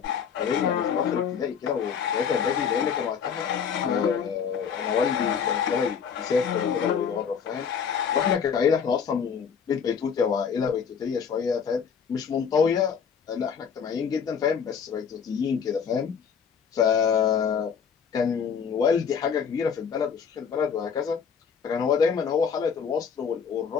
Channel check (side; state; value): right; quieter; 6.9 dB